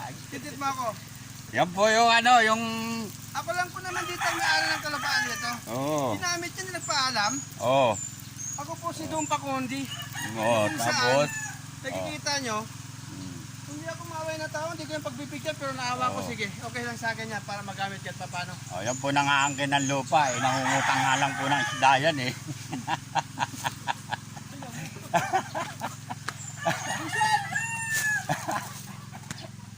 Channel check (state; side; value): identical; both; correlation 1.00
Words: Titit mo ako. Yan po yung ano, yung... Ako lang po naman dito ang may-ari ng kalupaan nito. Oo. Ginamit niya, nagpaalam. Oo. Ako po si Dumpa Kondi. Oo, Kung tapos... saan, nakikita nyo, hindi ako maaway na tao, hindi ko yung pagbibigyan, pero naawa ko, sige, okay lang sa akin yan para magamit yan, paano? Oh, yan po nangaangkin ng lupa eh. Nangungutang nga lang po ng isda yan eh.